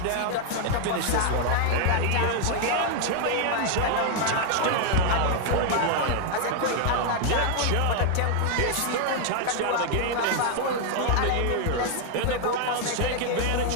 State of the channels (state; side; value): different; both; correlation 0.00